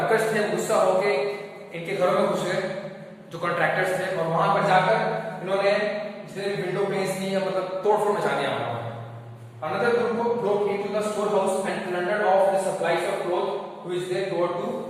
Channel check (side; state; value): both; identical; correlation 1.00